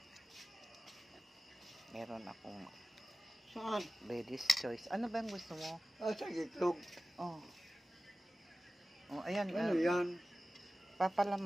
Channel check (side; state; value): both; normal; correlation 0.96